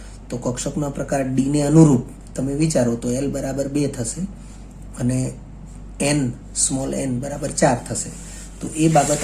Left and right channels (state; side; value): identical; both; correlation 1.00